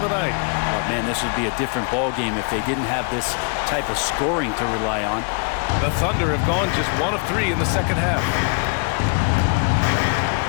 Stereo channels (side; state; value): right; quieter; 38.4 dB